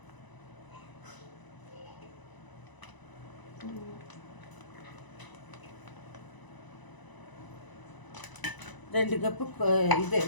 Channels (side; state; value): right; late; 1.0 ms